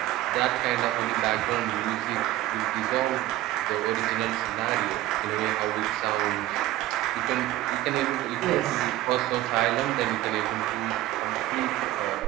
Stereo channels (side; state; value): left; quieter; 15.3 dB